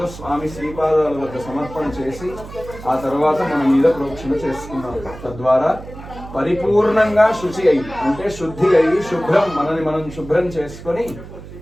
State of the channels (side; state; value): right; noise; hum, 14 dB below the sound